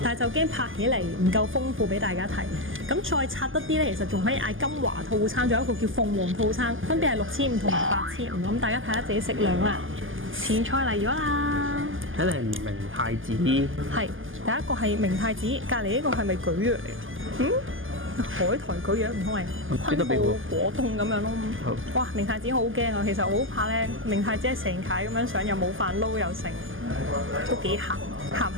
但係就驚拍起嚟唔夠豐富俾大家睇。咁再拆得啲咧，其實仲可以嗌金華套餐，仲有一個叫鳳凰套餐，分別係6500同埋8500。咁大家睇下自己食量啦。前菜嚟咗啦，睇嚟係明太子。係第一個係明太子，隔離呢個係咪蒟蒻嚟？海苔蒟蒻唔通係昆布果凍咁樣咯。哇！明太子好驚啊，其實我好怕咧，明太子係成塊咁樣上，又冇飯撈又剩，都幾鹹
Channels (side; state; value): left; late; 0.58 ms